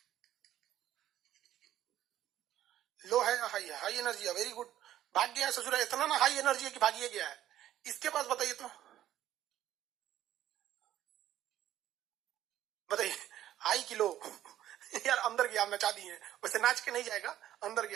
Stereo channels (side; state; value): left; quieter; 12.5 dB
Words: लो है या हाई है? हाई एनर्जी है, वेरी गुड। भाग गया है ससुरा, इतना ना हाई एनर्जी है कि भागिए गया है। इसके पास बताइए तो, बताइए हाई की लो? यार अंदर गया, नचा दिए, वैसे नाच के नहीं जाएगा, अंदर